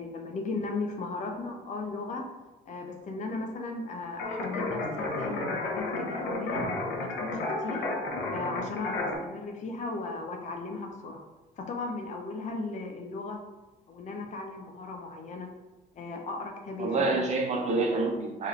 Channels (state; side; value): normal; both; correlation 0.36